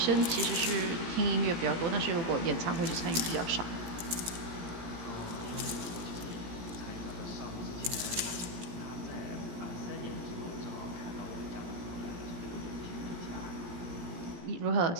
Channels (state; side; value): late; left; 17 ms